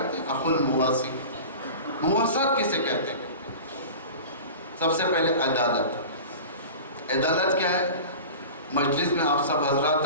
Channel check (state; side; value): inverted; both; correlation -0.35